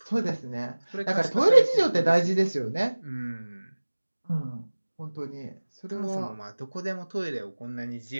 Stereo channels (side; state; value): both; inverted; correlation -1.00